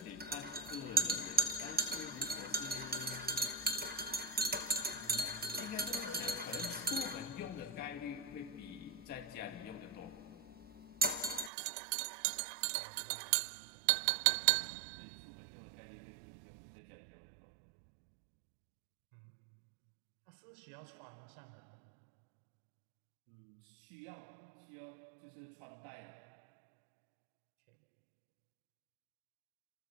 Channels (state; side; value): drops out; left; at 11.5 s